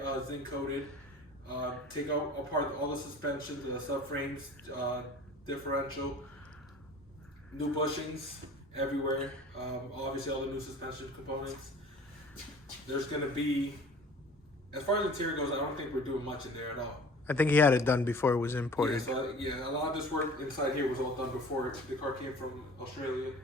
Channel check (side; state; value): both; normal; correlation 0.45